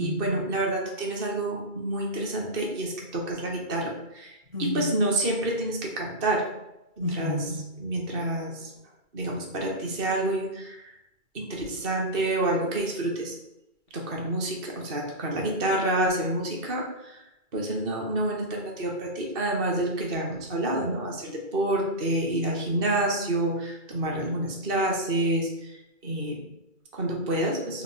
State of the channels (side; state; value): left; late; 2.3 ms